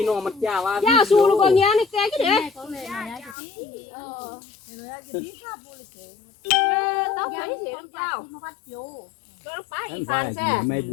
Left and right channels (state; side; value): drops out; right; at 3.4 s